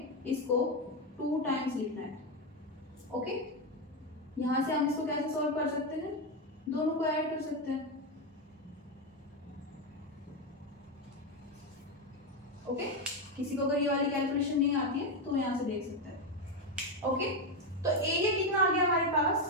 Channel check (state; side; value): normal; both; correlation 0.09